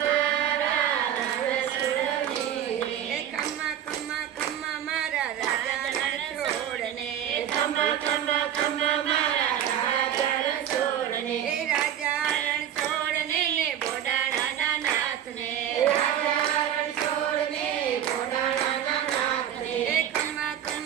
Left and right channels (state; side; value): quieter; left; 10.2 dB